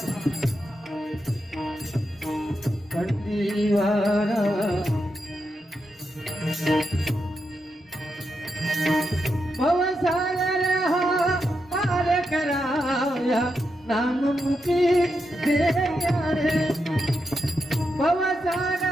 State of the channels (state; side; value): normal; both; correlation 0.85